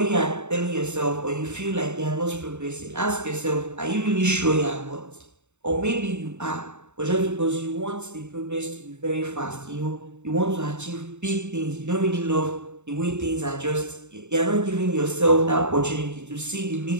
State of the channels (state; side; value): late; left; 0.83 ms